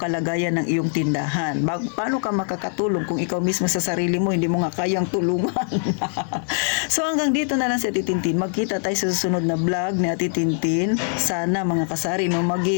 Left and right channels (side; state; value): right; silent; 55 dB below the other